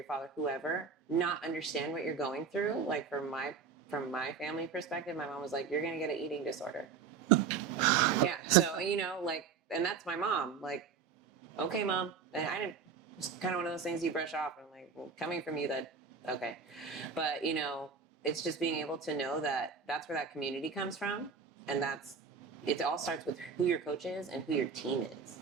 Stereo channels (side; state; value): left; quieter; 5.8 dB